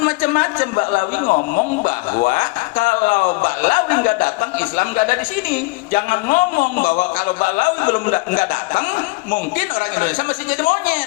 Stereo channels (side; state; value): right; quieter; 24.9 dB